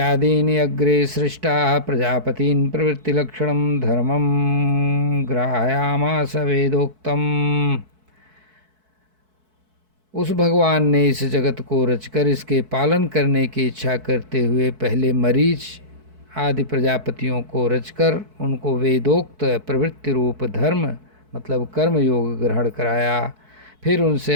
अग्रे सृष्टाः प्रजापतीन् प्रवृत्तिलक्षणं धर्मं ग्राहयामास वेदोक्तम्। उस भगवान ने इस जगत को रचकर इसके पालन करने की इच्छा करते हुए पहले मरीच आदि प्रजापतियों को रचकर उनको वेदोक्त प्रवृत्ति रूप धर्म मतलब कर्म योग ग्रहण कराया। फिर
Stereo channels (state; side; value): late; left; 4.6 ms